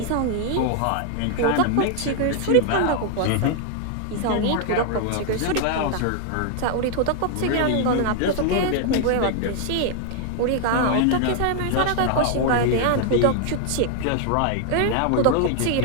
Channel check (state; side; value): different; both; correlation 0.00